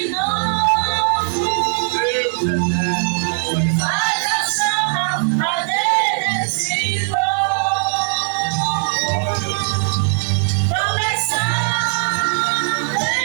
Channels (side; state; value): left; silent; digital silence